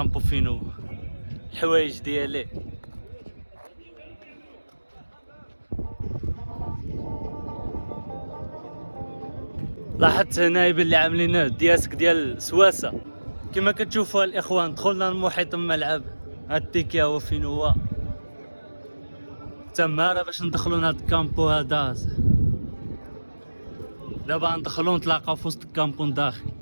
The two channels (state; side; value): inverted; both; correlation -1.00